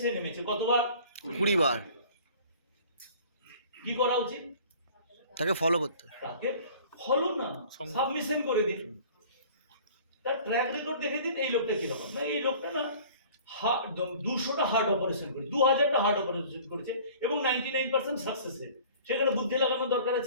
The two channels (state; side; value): inverted; both; correlation -0.48